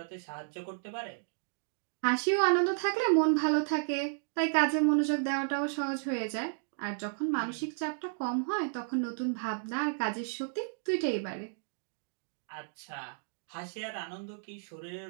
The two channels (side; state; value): left; silent; digital silence